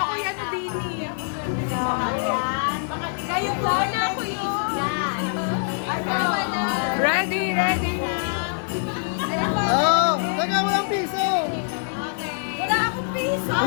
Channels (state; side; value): silent; right; 63 dB below the other